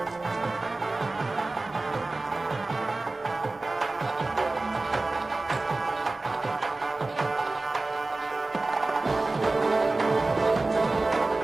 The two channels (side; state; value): left; quieter; 3.2 dB